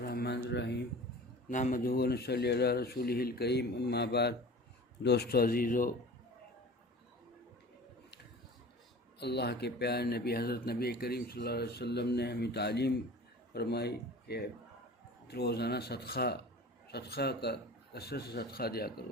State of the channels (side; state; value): both; normal; correlation 0.40